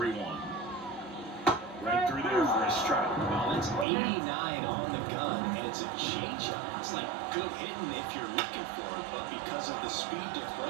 Right through there for a strike. Well, that's 89 on the gun, and it's a changeup. It's like good hitting if you're looking for it, but because of the speed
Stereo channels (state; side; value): drops out; left; at 3.9 s